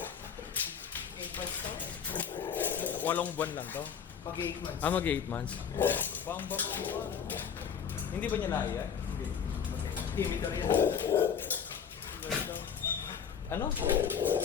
Walong buwan lang to. Pag 8 months. Mag 8 months. Bam-bam. Hindi ba niya naiya? Hindi. Timitor yan. Ano?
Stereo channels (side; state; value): right; quieter; 7.4 dB